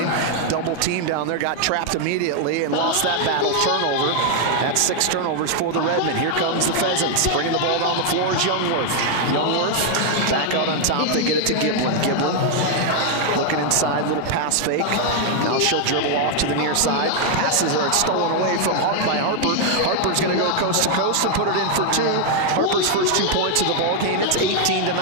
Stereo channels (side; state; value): both; different; correlation 0.00